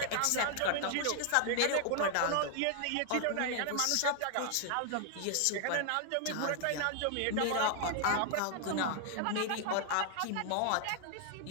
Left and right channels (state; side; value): different; both; correlation 0.00